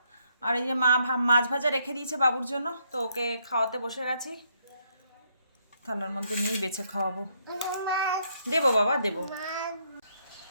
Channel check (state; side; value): inverted; both; correlation -0.73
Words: আর এই যে মা মাছ ভাজা রেখে দিয়েছে বাবুর জন্য, তো ওকে খাওয়াতে বসে গেছি। থালার মধ্যে নিয়েই বেছে খাওয়াবো। দেবো বাবা দেবো।